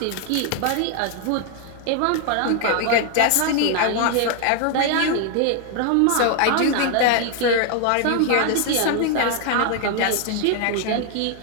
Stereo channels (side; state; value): both; different; correlation 0.00